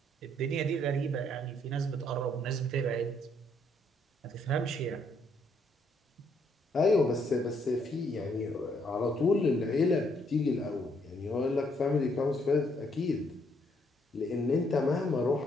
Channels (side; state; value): both; normal; correlation 0.71